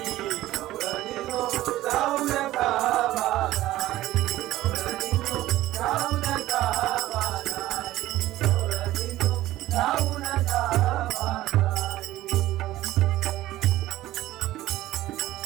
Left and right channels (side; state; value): left; quieter; 15.5 dB